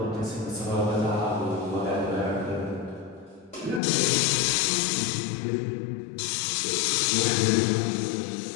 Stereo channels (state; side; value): drops out; right; at 3.8 s